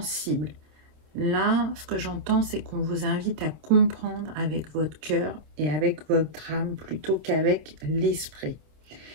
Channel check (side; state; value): left; late; 26 ms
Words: Là, ce que j'entends, c'est qu'on vous invite à comprendre avec votre cœur et avec votre âme plutôt qu'avec l'esprit.